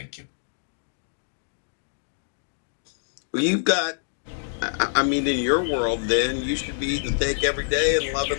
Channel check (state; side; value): silent; right; digital silence